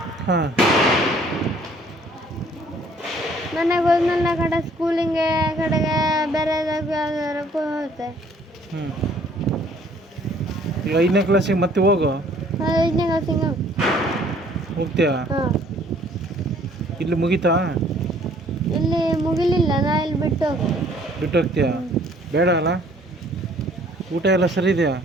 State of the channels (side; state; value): both; normal; correlation 0.59